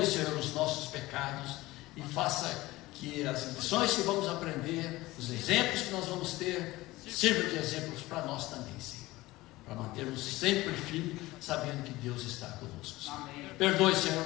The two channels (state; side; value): quieter; right; 18.9 dB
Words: Senhor, os nossos pecados e faça que as lições que vamos aprender, os exemplos que nós vamos ter, sirvam de exemplos para nós também, Senhor. Para mantermos sempre firmes, sabendo que Deus está conosco, Senhor. Amém. Perdoe, Senhor,